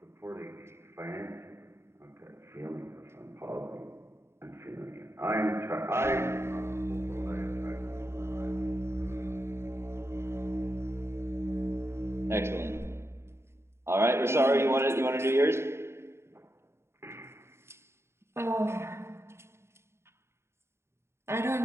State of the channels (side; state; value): left; late; 0.12 ms